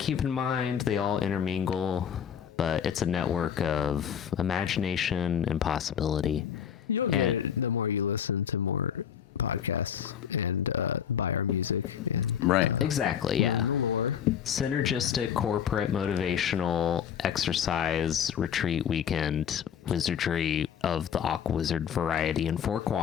in mind. They all intermingle, but it's a network of imagination and possibility. You'll get And- it the more you listen to more podcasts and buy our music and Right. Exactly, yeah. the lore. Synergistic, corporate, motivational, exercise, retreat weekend, wizardry of the Aquawizard variety in 4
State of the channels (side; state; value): right; quieter; 8.5 dB